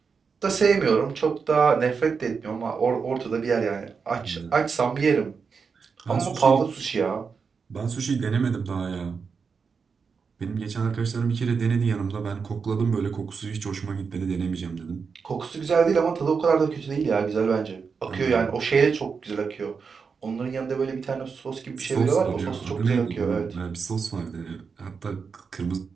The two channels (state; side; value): quieter; left; 5.5 dB